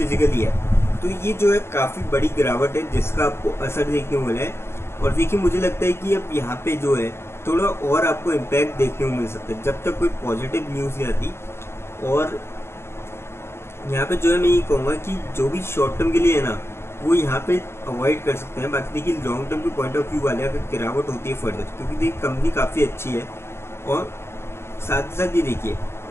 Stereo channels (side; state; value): right; late; 0.12 ms